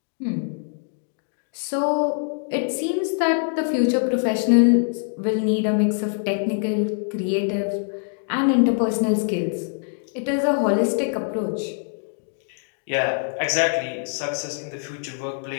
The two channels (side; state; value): right; silent; 63 dB below the other